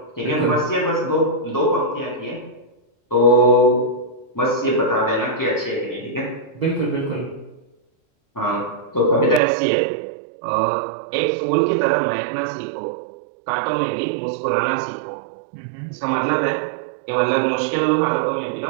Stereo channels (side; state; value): left; drops out; at 9.4 s